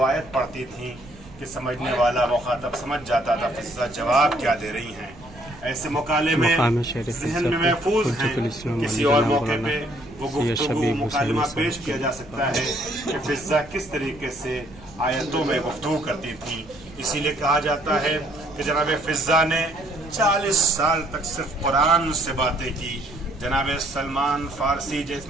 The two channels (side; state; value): right; noise; rumble, 21 dB below the sound